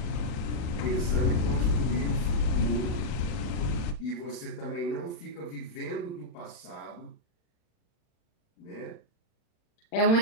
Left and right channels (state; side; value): late; right; 41 ms